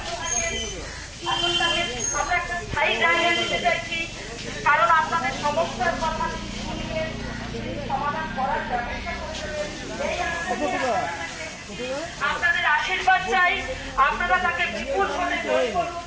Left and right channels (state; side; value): identical; both; correlation 1.00